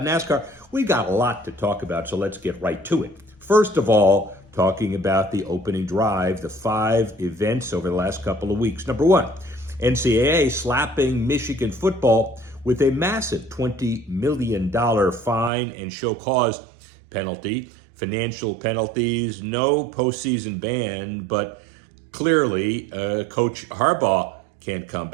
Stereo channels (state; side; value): drops out; left; at 15.5 s